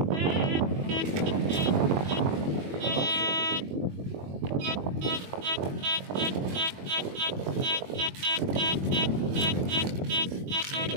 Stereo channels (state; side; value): late; left; 21 ms